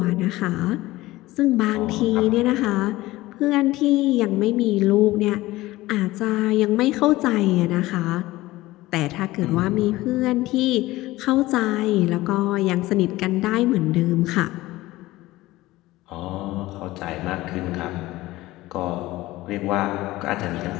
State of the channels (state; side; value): quieter; right; 18.0 dB